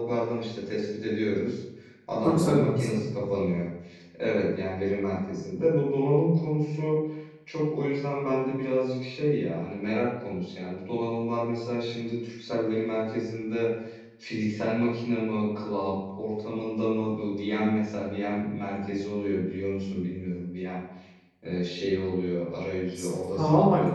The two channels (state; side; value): identical; both; correlation 1.00